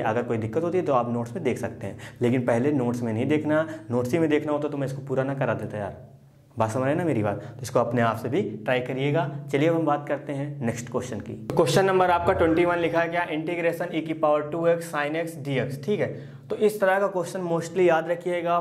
अगर कोई दिक्कत होती है तो आप नोट्स में देख सकते हैं, लेकिन पहले नोट्स में नहीं देखना, नोट्स ही में देखना होता तो मैं इसको पूरा ना करा देता यार। बात समझ रहे ना मेरी बात। तो इसको अपने आप से भी ट्राई करिएगा। चलिए अब हम बात करते हैं नेक्स्ट क्वेश्चन की। क्वेश्चन नंबर आपका 21 लिखा है क्या, integration e⁻²x sin x dx। ठीक है, तो इस तरह का क्वेश्चन मोस्टली याद रखिएगा,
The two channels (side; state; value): both; identical; correlation 1.00